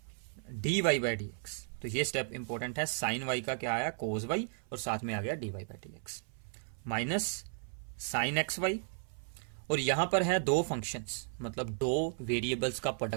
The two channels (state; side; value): silent; left; 54 dB below the other